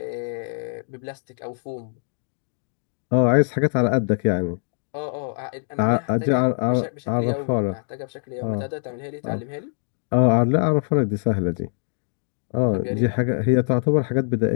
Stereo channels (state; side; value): silent; right; digital silence